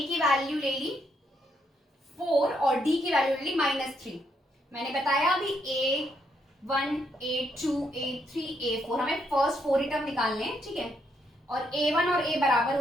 की वैल्यू ले ली 4 और डी की वैल्यू ले ली -3। मैंने बताया अभी A1, A2, A3, A4 हमें फर्स्ट 4 ही टर्म निकालने हैं, ठीक है। और A1 और A बराबर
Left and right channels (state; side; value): normal; both; correlation 0.76